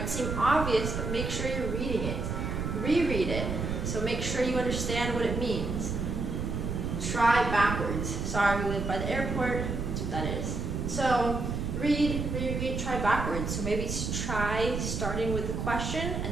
seem obvious, but make sure you're reading it. Reread it. So make sure you understand what it means. Try backwards. Sorry, we live by the airport. That's what that is. So read, reread, try backwards. So maybe try starting with the question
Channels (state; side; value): noise; right; rumble, 3 dB below the sound